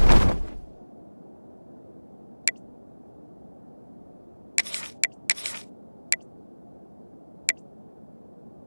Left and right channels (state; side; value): inverted; both; correlation -1.00